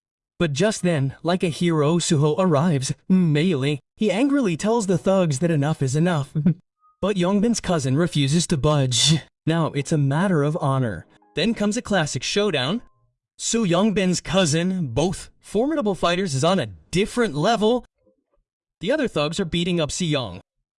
But just then, like a hero, Suho arrives. Melee. He angrily tells the thugs that enough is enough. But Yongbin's cousin refuses to budge. Now, it's a matter of honor. Then comes a classic showdown. Soo Yongbin's cousin, both formidable fighters, is on a different level. The other thugs are beating up Seo-yeon.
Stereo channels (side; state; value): both; identical; correlation 1.00